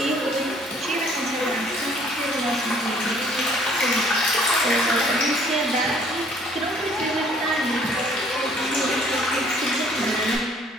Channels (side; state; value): both; normal; correlation 0.59